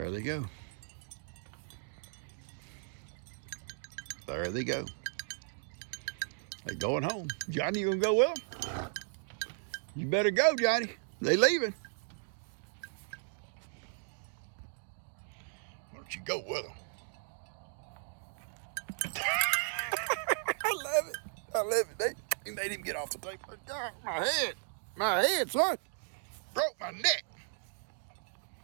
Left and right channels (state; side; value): silent; left; digital silence